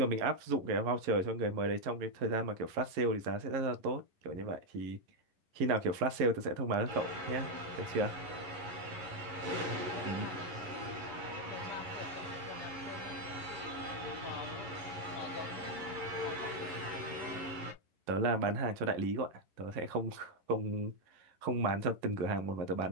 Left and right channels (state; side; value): late; left; 11 ms